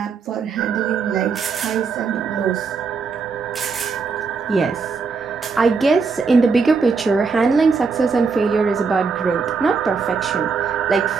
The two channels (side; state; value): left; quieter; 5.0 dB